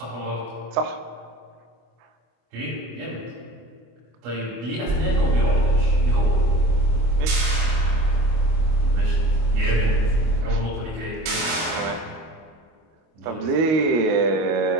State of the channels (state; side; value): late; left; 25 ms